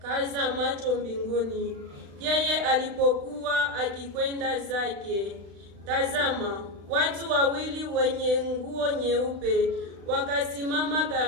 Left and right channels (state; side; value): late; left; 36 ms